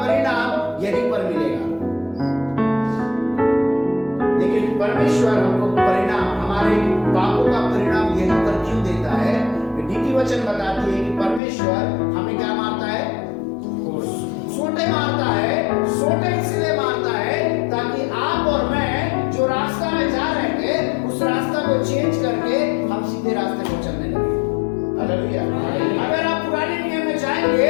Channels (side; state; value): right; drops out; at 11.4 s